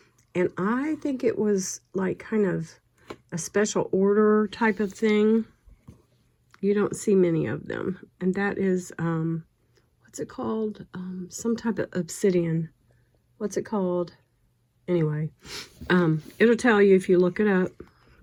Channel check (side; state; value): both; identical; correlation 1.00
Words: And I think it was like kind of a special order type of thing. You don't see many of them. And that is, what's it called? Some type of obsidian. What's it called? Anyway, it'll tell you if you look it up.